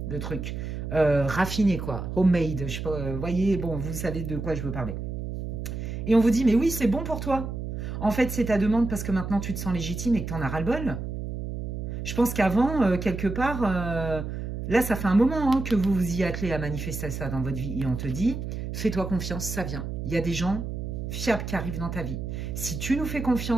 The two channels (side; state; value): right; noise; hum, 5 dB below the sound